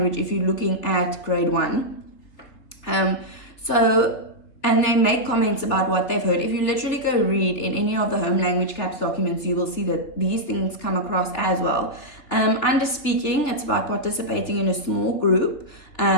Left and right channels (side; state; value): right; late; 3.4 ms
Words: if you're looking at grade 1. And they make comments about what they've heard. If you literally go read in any of the home language CAPS documents, you will see that these things come across as well. Under speaking, it's about participating in a small group,